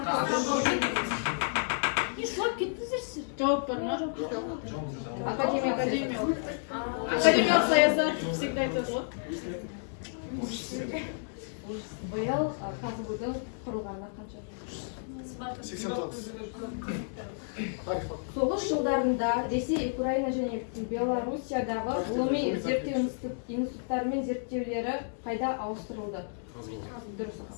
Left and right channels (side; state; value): right; silent; 57 dB below the other